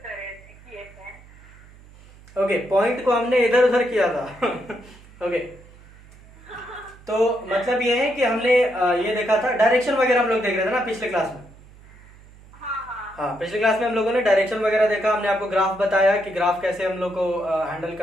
करे किए थे। ओके, पॉइंट को हमने इधर उधर किया था। ओके, तो मतलब ये है कि हमने ये देखा था, डायरेक्शन वगैरह हम लोग देख रहे थे ना पिछले क्लास में। हाँ हाँ। हाँ, पिछले क्लास में हम लोगों ने डायरेक्शन वगैरह देखा, हमने आपको ग्राफ बताया कि ग्राफ कैसे हम लोग को हैंडल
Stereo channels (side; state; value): right; noise; hum, 23 dB below the sound